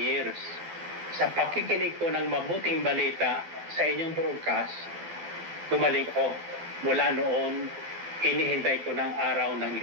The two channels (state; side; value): late; left; 12 ms